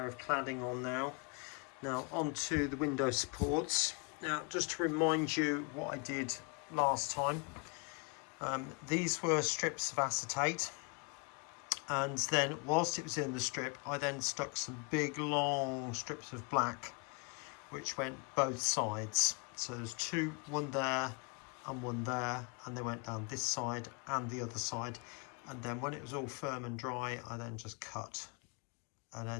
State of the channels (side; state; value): right; quieter; 33.9 dB